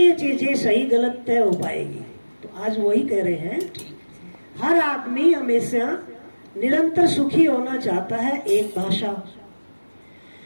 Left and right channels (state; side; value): inverted; both; correlation -1.00